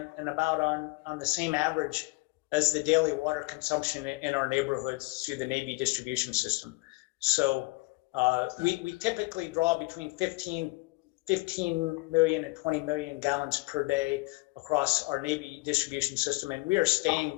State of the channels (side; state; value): right; quieter; 24.5 dB